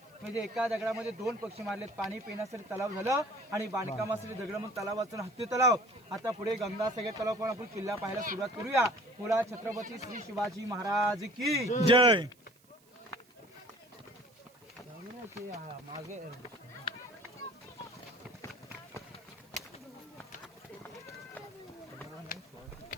म्हणजे एका दगडामध्ये 2 पक्षी मारलेत. पाणी पिण्यासाठी तलाव झालं आणि बांधकामासाठी दगड म्हणून तलावाचं हत्ती तलाव. आता पुढे गंगासागर तलाव पण आपण किल्ला पाहायला सुरुवात करूया. पुढा छत्रपती श्री शिवाजी महाराज की जय. मागे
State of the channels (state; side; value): noise; right; hiss, 30 dB below the sound